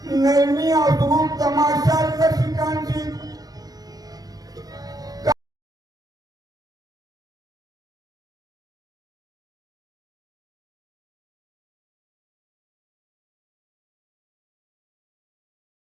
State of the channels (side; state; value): left; late; 0.18 ms